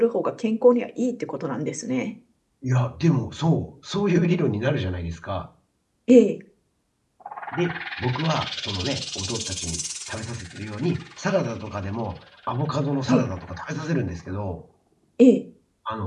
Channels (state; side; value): identical; both; correlation 1.00